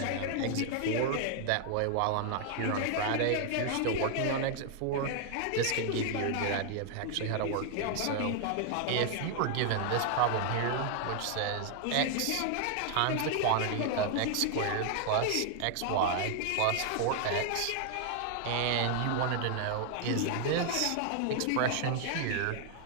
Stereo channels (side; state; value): both; different; correlation 0.00